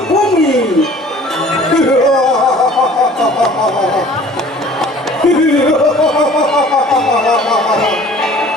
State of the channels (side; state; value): both; normal; correlation 0.49